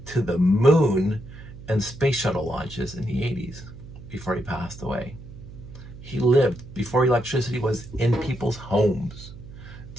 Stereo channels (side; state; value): right; noise; hum, 15 dB below the sound